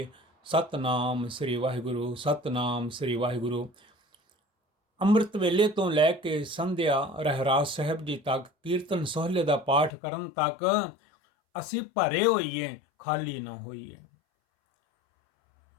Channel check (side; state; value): right; drops out; at 9.9 s